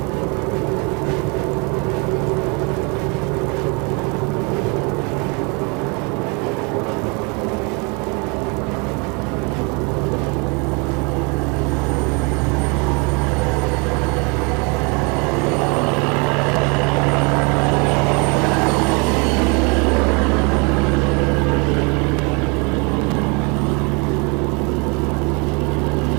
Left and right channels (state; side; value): quieter; left; 31.6 dB